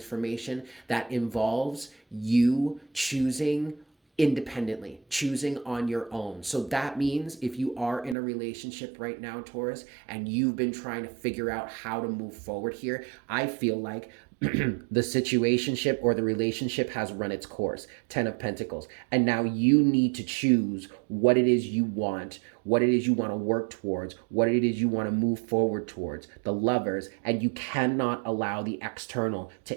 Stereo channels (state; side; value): drops out; left; at 8.2 s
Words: that involves you choosing independently, choosing on your own. So that means if you are in a relationship right now, Taurus, and you've been trying to figure out how to move forward here, I feel like the situationship or the relationship has run its course. 10 of Pentacles. And now you need to choose what it is you want, what it is you want to work towards, what it is you want to move forward towards. The Lovers, and you cannot allow the external